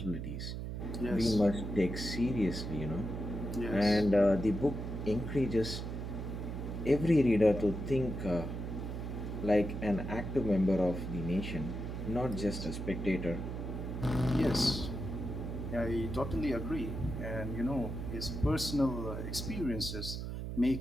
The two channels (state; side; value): noise; right; hum, 5 dB below the sound